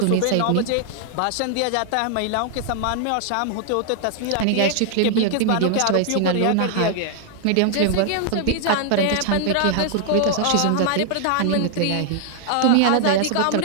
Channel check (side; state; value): both; different; correlation 0.00